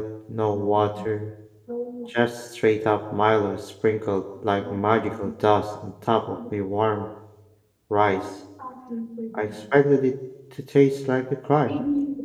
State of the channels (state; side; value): identical; both; correlation 1.00